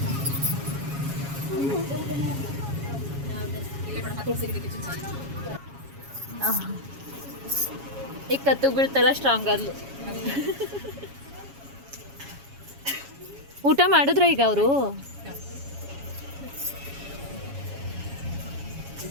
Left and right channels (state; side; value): late; left; 7.2 ms